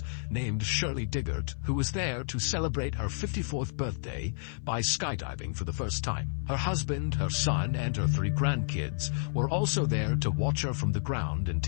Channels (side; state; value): right; silent; 55 dB below the other